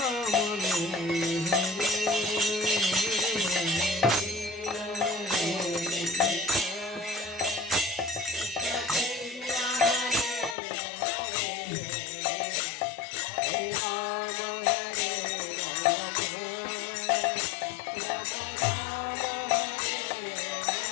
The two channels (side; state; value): right; drops out; at 10.6 s